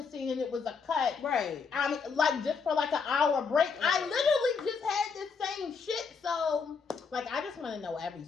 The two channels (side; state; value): right; quieter; 5.4 dB